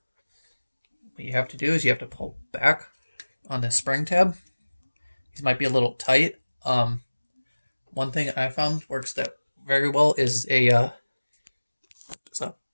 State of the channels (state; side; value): inverted; both; correlation -1.00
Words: What you have to do is you have to pull back on this spring tab. These might be a little tight. One thing I found works that very well is a